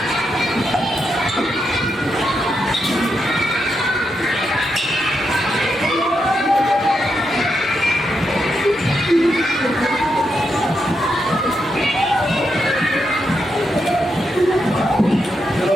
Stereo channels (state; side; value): normal; both; correlation 0.83